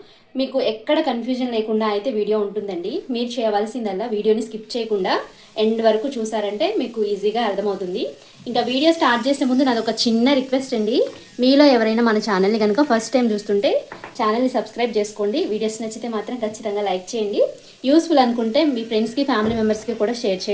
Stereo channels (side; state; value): both; identical; correlation 1.00